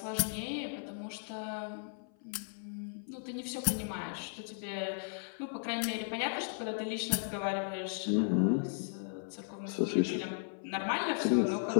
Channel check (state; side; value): silent; right; 54 dB below the other